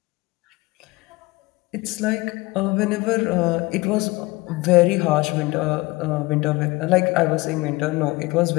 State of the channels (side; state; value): right; quieter; 22.6 dB